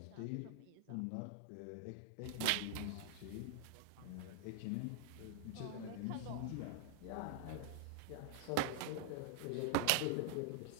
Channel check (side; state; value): both; different; correlation 0.00